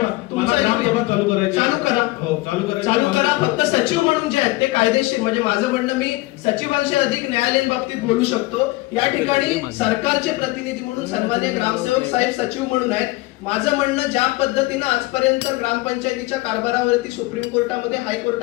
मला ग्रामसभा चालू करायची. चालू करा. हो, चालू करा. फक्त सचिव म्हणून जे आहेत ते कायदेशीर, म्हणजे माझं म्हणणं मी सचिवांशी अधिक न्यायालयीन बाबतीत बोलू शकतो. या ठिकाणी सरकारचे प्रतिनिधी म्हणून सन्माननीय ग्रामसेवक साहेब सचिव म्हणून आहेत. माझं म्हणणं, ज्या पद्धतीनं आजपर्यंत ग्रामपंचायतीच्या कारभारावरती सुप्रीम कोर्टामध्ये,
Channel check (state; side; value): quieter; right; 20.9 dB